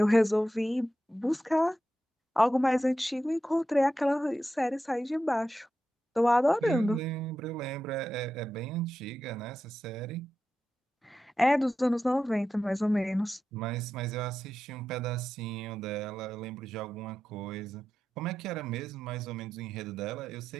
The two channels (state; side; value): normal; both; correlation 0.90